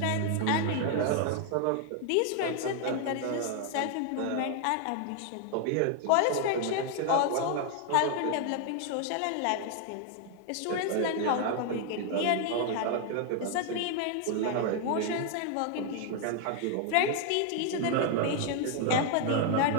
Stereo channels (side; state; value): both; different; correlation 0.00